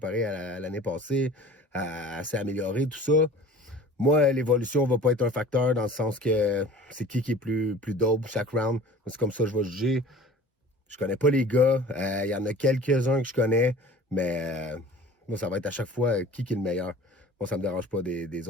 à l'année passée, s'est améliorée, tout ça. Moi, l'évolution va pas être un facteur dans le sens que c'est qui est plus dope chaque round. C'est comme ça que je vais juger. Je connais pas les gars. Il y en a quelques-uns que je connais, mais moi, ça va être à chaque fois qui est le meilleur. Moi, ça me dérange pas des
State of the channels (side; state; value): both; normal; correlation 0.43